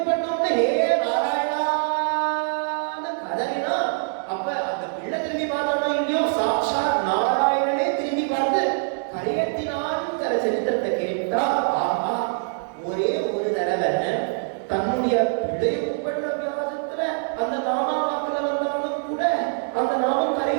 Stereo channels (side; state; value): left; silent; digital silence